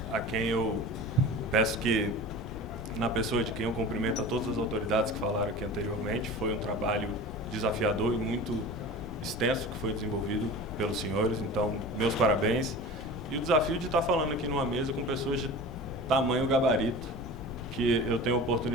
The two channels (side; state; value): left; noise; rumble, 11 dB below the sound